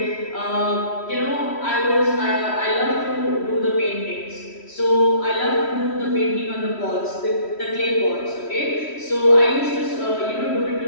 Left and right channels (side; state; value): right; late; 3.1 ms